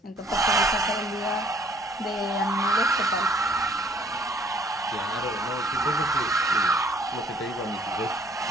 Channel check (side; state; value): both; normal; correlation 0.60